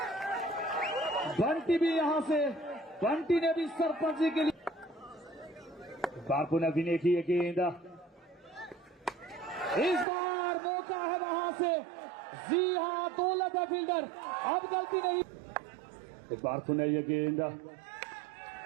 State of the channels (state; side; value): drops out; left; at 10.1 s